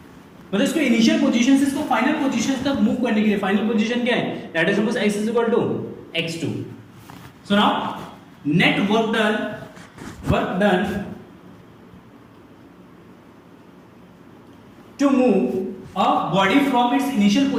मतलब इसको initial position से इसको final position तक move करने के लिए फाइनल पोजीशन क्या है? Let us suppose x is equal to x2। So now net work done to move a body from its initial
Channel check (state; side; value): identical; both; correlation 1.00